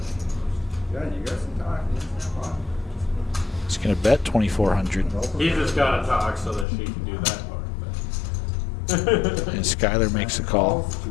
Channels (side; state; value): right; drops out; at 6.7 s